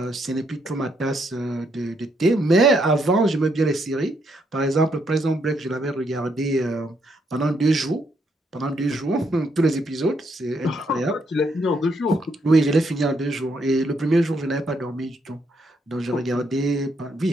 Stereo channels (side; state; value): both; normal; correlation 0.75